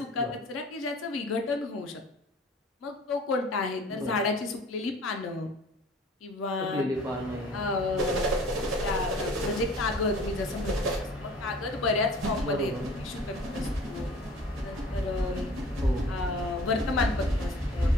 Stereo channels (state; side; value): normal; both; correlation 0.47